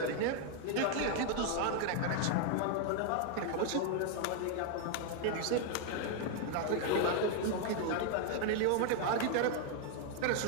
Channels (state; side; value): different; both; correlation 0.00